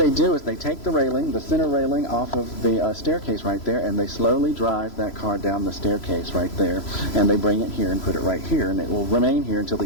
do is they take the railing, the center railing, off of the staircase right there, and they slowly drive that car down the staircase right there, and they bring it here and put it right here, and it will remain here until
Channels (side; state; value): right; late; 3.0 ms